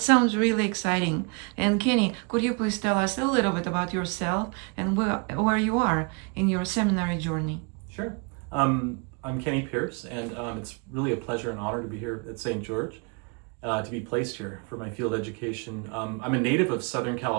sounds really exciting. And Kenny, could you please tell us a little bit about yourself and where you are in your seminary journey? Sure. I'm Kenny Pierce, and it's really a pleasure and honor to be here at St. George, to be placed here for my field education. I'm a native of Southern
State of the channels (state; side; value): quieter; left; 32.7 dB